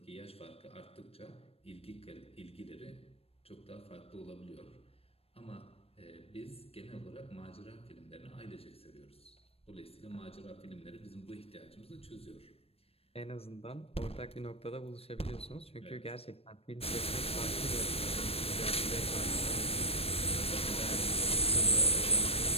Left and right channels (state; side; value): late; right; 0.28 ms